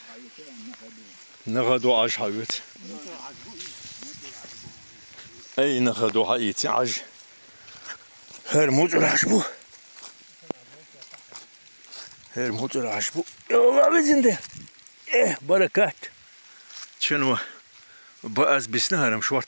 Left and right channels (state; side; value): inverted; both; correlation -1.00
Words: نغدو عاج حبيت اي نغدو حيتي عاج هرموت العشبو يلا بزنده ايه بركات شنو بأز بسنهرم